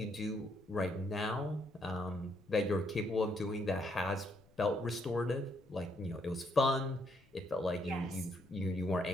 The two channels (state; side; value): noise; left; rumble, 29 dB below the sound